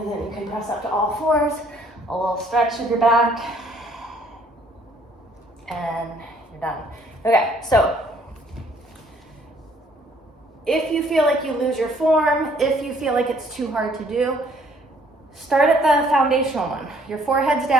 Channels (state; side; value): normal; both; correlation 0.62